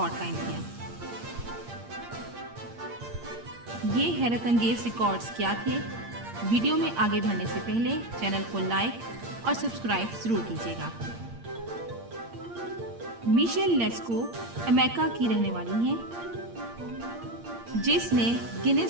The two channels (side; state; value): left; late; 8.7 ms